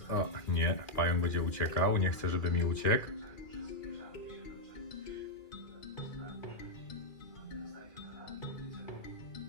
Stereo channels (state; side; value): late; right; 2.4 ms